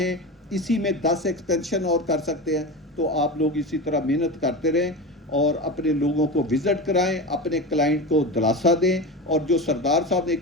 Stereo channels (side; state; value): both; normal; correlation 0.25